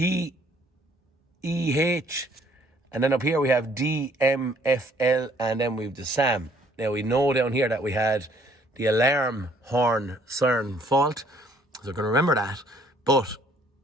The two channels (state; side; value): normal; both; correlation 0.62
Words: And then up here we have DMFL, and then we have the SAM. Now we know down here that we had the alarm horn siren fault, so I can remember that. But